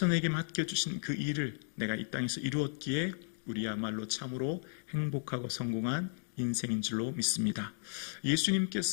내게 맡겨주신 그 일을 내가 이 땅에서 이루었기에 우리야말로 참으로 행복하고 성공한 인생인 줄로 믿습니다.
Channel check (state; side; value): silent; right; digital silence